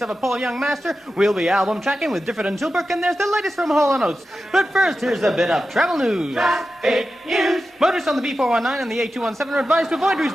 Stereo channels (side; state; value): both; normal; correlation 0.92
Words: of a Paul Young master. We'll be album tracking with Difford and Tilbrook, and there's the latest from Hall & Oates. But first, here's a bit of travel news. Traffic news. Motorists on the B419 and the A217 are advised to avoid routes